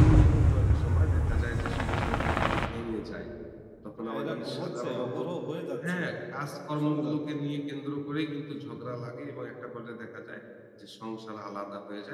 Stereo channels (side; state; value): both; identical; correlation 1.00